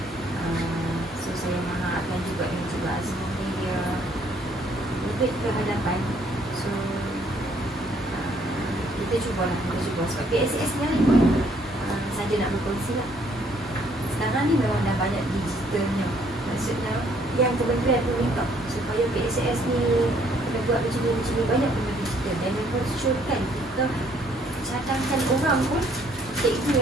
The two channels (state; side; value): normal; both; correlation 0.65